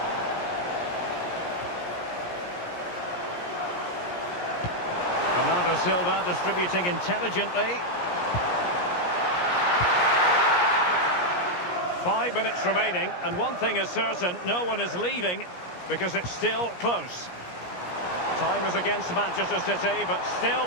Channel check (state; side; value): late; right; 17 ms